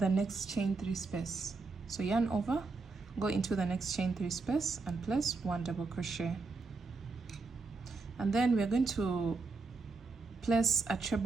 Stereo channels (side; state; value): left; quieter; 4.0 dB